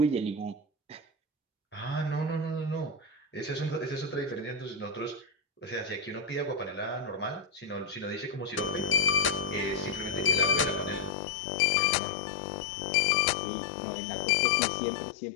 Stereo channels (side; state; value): right; drops out; at 11.2 s